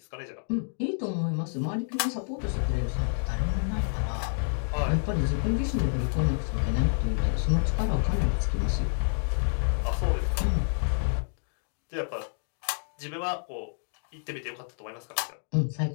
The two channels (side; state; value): right; silent; digital silence